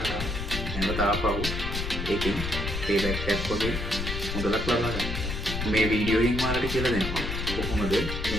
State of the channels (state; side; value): noise; left; rumble, 4 dB below the sound